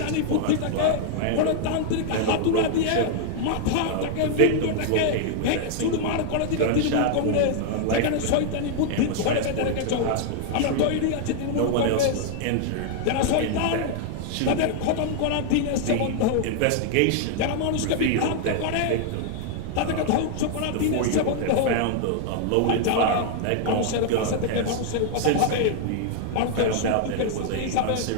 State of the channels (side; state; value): both; different; correlation 0.00